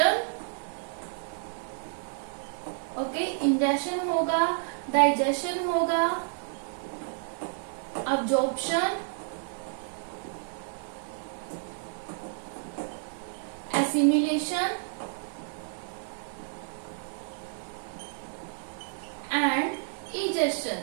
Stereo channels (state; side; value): silent; left; digital silence